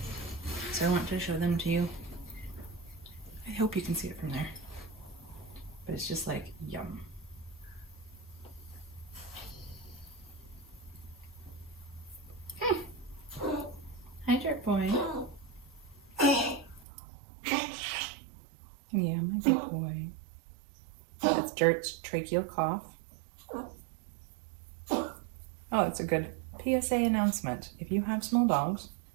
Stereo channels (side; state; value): left; drops out; at 16.9 s